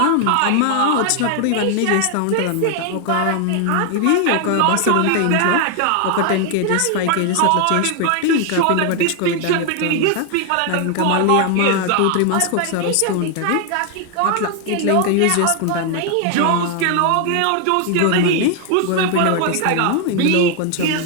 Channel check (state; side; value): different; both; correlation 0.00